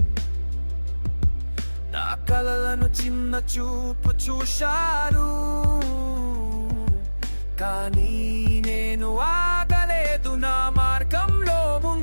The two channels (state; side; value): inverted; both; correlation -1.00